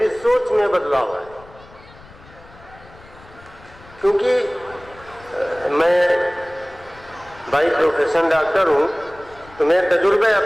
سوچ میں بدلاؤ آیا. کیونکہ میں بائی پروفیشن ڈاکٹر ہوں تو میں تجربے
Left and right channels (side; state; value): left; noise; rumble, 23 dB below the sound